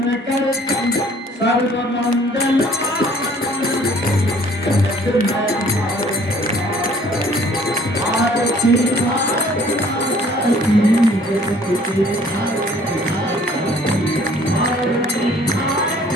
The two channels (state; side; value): normal; both; correlation 0.56